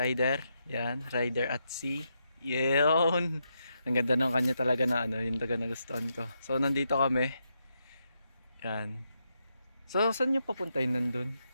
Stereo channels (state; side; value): inverted; both; correlation -0.82